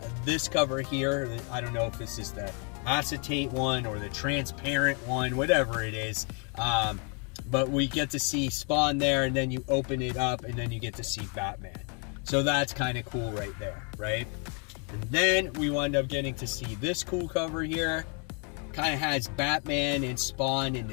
this cover here. I don't know if this is the acetate one or the transparent one, whatever it is. But we get to see Spawn there, and then you open it up, and then you get to see Batman. So that's kind of cool right there, right? And then we wind up getting to see this cool cover here. Kind of has Batman and Spawn in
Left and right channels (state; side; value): quieter; right; 37.7 dB